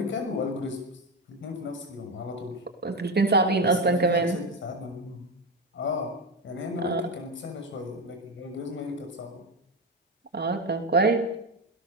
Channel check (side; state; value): both; normal; correlation 0.14